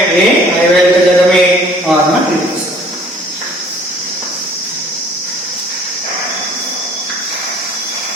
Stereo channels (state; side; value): normal; both; correlation 0.55